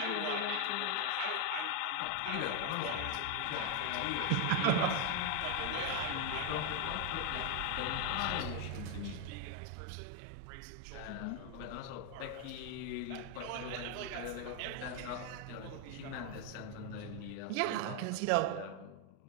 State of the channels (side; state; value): both; different; correlation 0.01